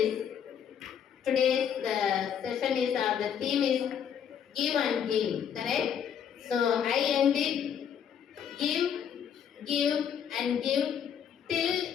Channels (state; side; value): quieter; right; 8.3 dB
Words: Today's session is the theme is give and give. Correct? So I end it. Give and give till